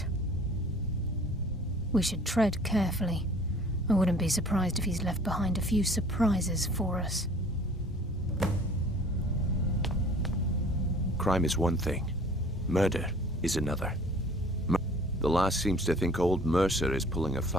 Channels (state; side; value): normal; both; correlation 0.50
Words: We should tread carefully. I wouldn't be surprised if he's left behind a few surprises for us. Crime is one thing. Murder is another. The last seems to think old Mercer is pulling a